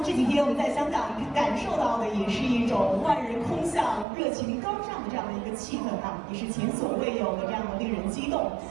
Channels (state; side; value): drops out; left; at 4.0 s